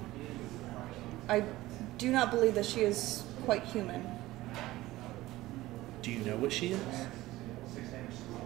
I do not believe that she is quite human. Do you know what she is?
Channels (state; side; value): quieter; left; 17.3 dB